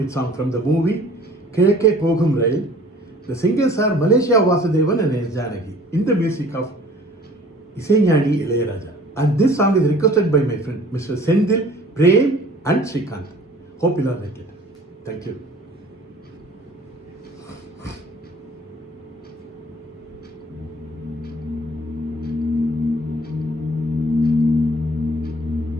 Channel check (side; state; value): both; normal; correlation 0.50